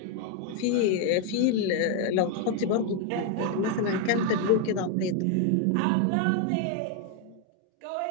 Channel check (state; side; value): different; both; correlation 0.01